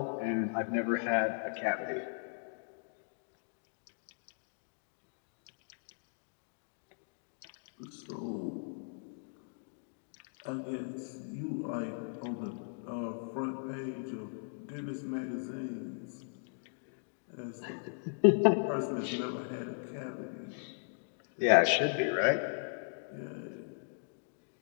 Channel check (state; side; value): silent; right; digital silence